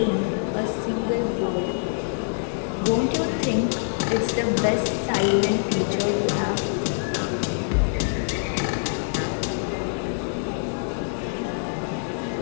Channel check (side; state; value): right; silent; digital silence